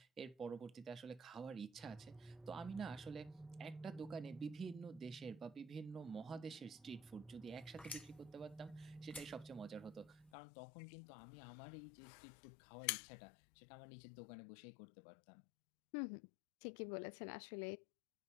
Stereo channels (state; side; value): drops out; right; at 10.3 s